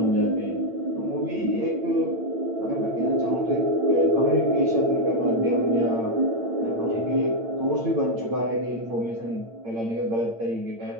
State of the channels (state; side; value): late; left; 8.8 ms